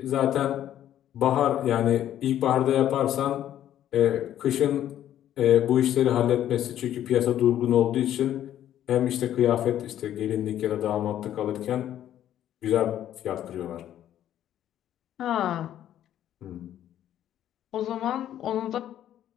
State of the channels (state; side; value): quieter; right; 11.5 dB